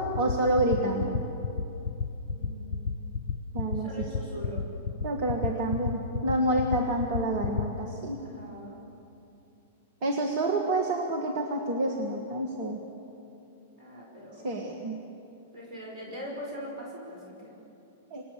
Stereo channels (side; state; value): both; inverted; correlation -0.31